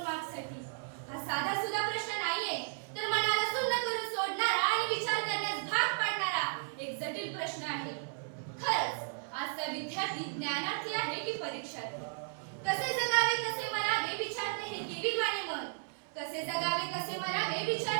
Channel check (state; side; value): silent; left; 55 dB below the other